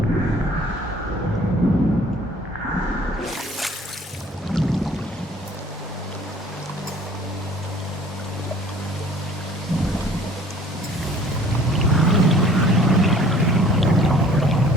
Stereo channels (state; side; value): normal; both; correlation 0.52